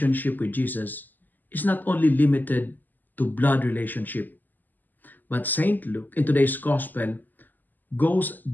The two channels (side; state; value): right; late; 0.086 ms